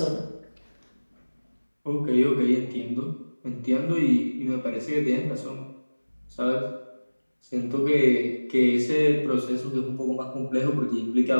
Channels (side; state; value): both; inverted; correlation -1.00